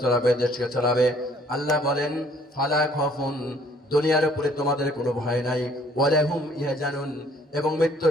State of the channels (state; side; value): normal; both; correlation 0.60